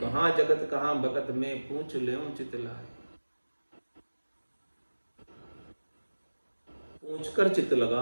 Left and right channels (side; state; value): both; inverted; correlation -1.00